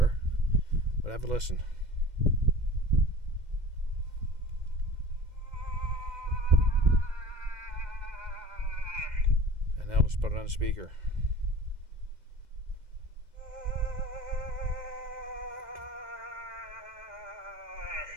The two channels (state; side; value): late; left; 2.0 ms